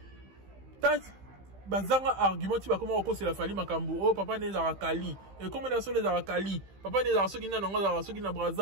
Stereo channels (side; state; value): left; late; 15 ms